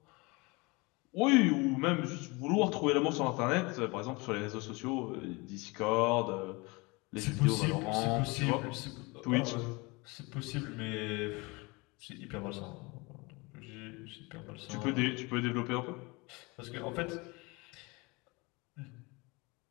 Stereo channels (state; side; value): quieter; right; 26.1 dB